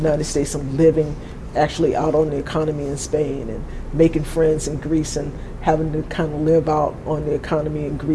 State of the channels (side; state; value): both; identical; correlation 1.00